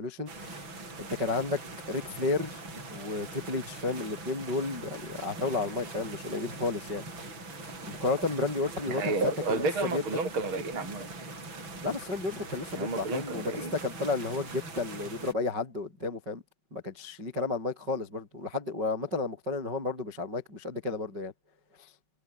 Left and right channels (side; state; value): left; late; 6.0 ms